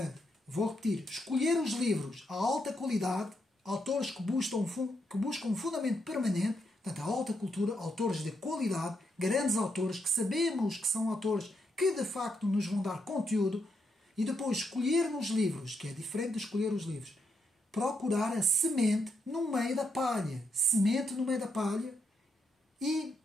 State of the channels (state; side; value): normal; both; correlation 0.80